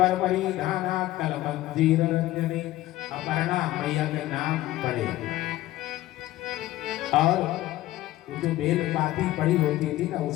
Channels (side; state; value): right; quieter; 15.8 dB